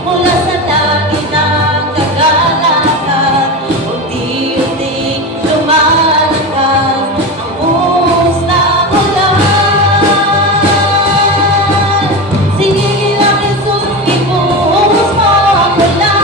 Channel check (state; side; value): normal; both; correlation 0.23